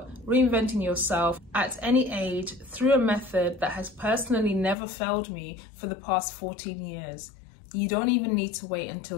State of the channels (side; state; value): right; drops out; at 4.8 s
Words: reinventing yourself at any age through a method that has personally never failed me for the past 14 years. You don't even need to wait